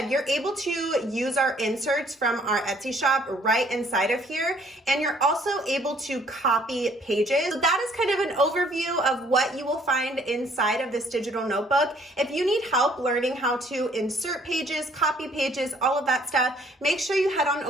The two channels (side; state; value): both; normal; correlation 0.62